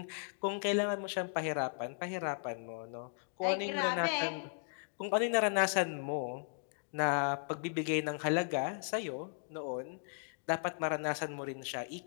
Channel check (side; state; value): right; silent; digital silence